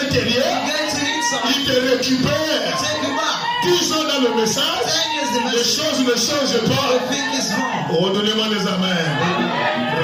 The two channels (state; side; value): identical; both; correlation 1.00